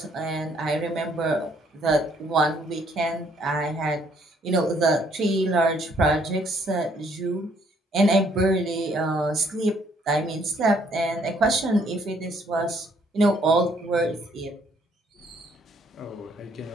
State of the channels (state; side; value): normal; both; correlation 0.66